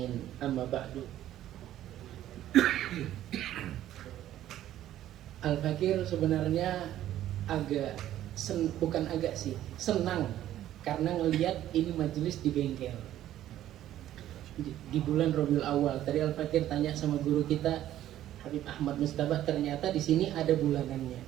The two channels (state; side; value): quieter; left; 12.7 dB